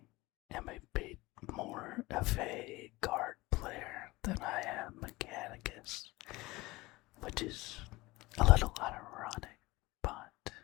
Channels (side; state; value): right; quieter; 20.9 dB